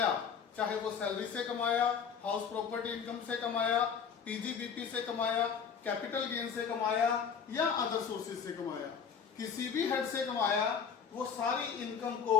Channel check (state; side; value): quieter; right; 6.8 dB